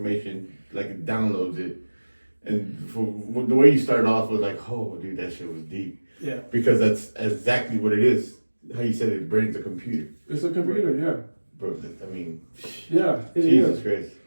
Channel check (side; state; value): both; inverted; correlation -1.00